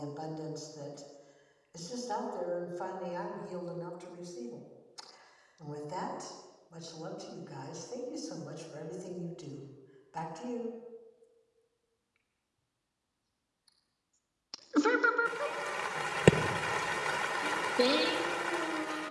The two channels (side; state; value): both; identical; correlation 1.00